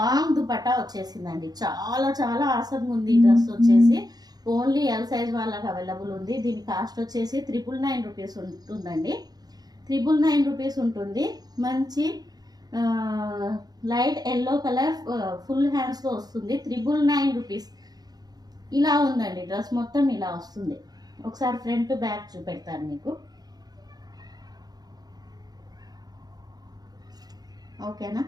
దుపట్టా వచ్చేసిందండి. చాలా చాలా ఆసంగా ఉంది. ఈ డ్రెస్ వచ్చేసి ఓన్లీ ఎల్ సైజ్ వాళ్ళకి అవైలబుల్ ఉంది. దీని కాస్ట్ వచ్చేసి 999 రూపీస్ ఉంటుందండి. 999 రూపీస్ ఉంటుంది. మంచి light yellow colour full hands తో వస్తుంది. 999 రూపీస్. ఇలా ఉందండి డ్రెస్ మొత్తం ఇలా వస్తుంది. ఒకసారి ఫ్రంట్ బ్యాక్ చూపెడతాను మీకు. ఓకేనా?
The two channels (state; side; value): late; left; 0.19 ms